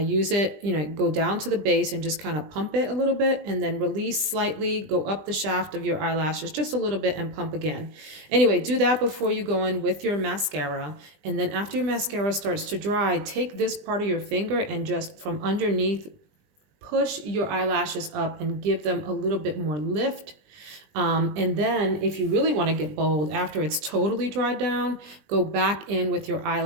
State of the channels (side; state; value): left; late; 20 ms